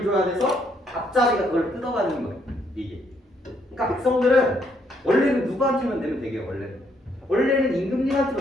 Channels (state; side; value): normal; both; correlation 0.72